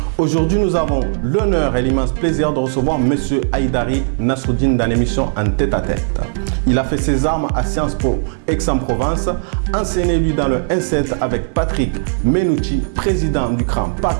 Aujourd'hui, nous avons l'honneur et l'immense plaisir de recevoir M. Haïdari Nasruddin dans l'émission En tête-à-tête. Il a fait ses armes à Sciences Po Aix-en-Provence, enseigné lui dans le N7 avec Patrick Menouchi, président du CRAN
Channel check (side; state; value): left; silent; digital silence